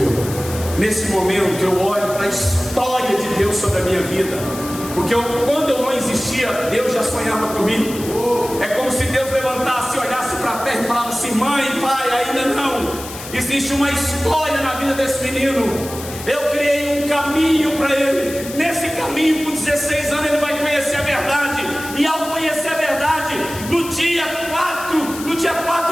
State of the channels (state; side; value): noise; left; hiss, 12 dB below the sound